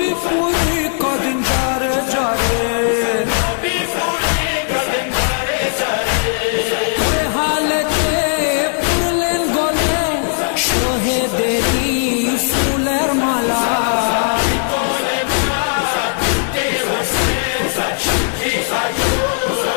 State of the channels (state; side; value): silent; right; 67 dB below the other